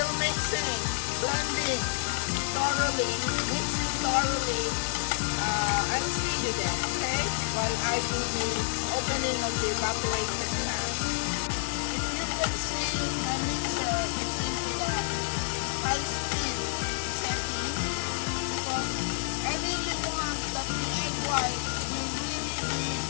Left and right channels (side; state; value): right; silent; digital silence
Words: mixing, blending thoroughly, mixing thoroughly. I'll see you then, okay? While I do the opening of the evaporation fan. If you can see my mixer, it's into the high speed setting because I really want that the egg white will really be